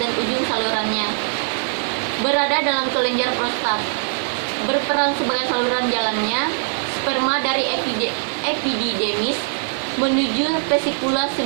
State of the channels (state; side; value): silent; left; digital silence